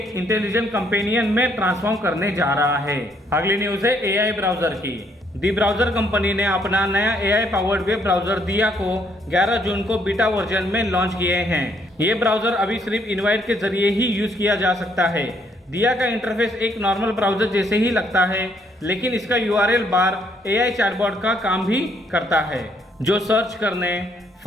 इंटेलिजेंट कंपेनियन में ट्रांसफॉर्म करने जा रहा है। अगली न्यूज है AI ब्राउजर की। दी ब्राउजर कंपनी ने अपना नया AI पावर्ड वेब ब्राउजर दिया को 11 जून को बीटा वर्जन में लॉन्च किए हैं। ये ब्राउजर अभी सिर्फ इनवाइट के जरिए ही यूज किया जा सकता है। दिया का इंटरफेस एक नॉर्मल ब्राउजर जैसे ही लगता है, लेकिन इसका URL बार AI चैटबॉट का काम भी करता है, जो सर्च करने,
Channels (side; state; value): both; normal; correlation 0.69